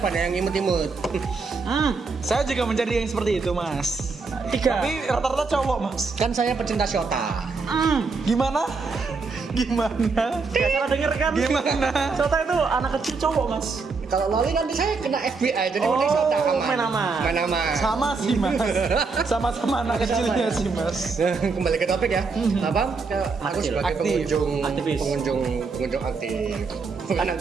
banyak yang imut-imut. Saya juga mencari yang seperti itu, Mas. 3. Tapi rata-rata cowok, Mas. Kan saya pecinta Shota. Gimana? Gak salah denger kan? Gimana? Sota itu anak kecil cowok, Mas. Kalau loli nanti saya kena FBI, jadi mending Shota aman. main aman. Main aman. Sama sih, Mas. Sama-sama anak kecilnya sih, Mas. Kembali ke topik ya. Apa? Aku Aktif. sebagai Aktif. Aktivis. pengunjung aktif. Bukan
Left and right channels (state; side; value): quieter; left; 4.5 dB